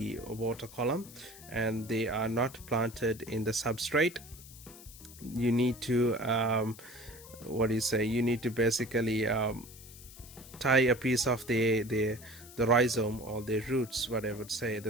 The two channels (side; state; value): left; noise; hiss, 18 dB below the sound